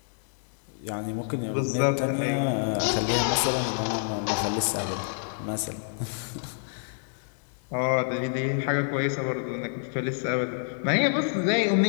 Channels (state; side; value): silent; right; digital silence